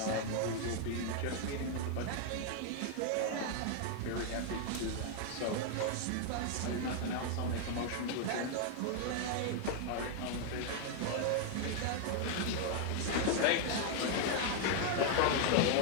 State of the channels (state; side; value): different; both; correlation 0.00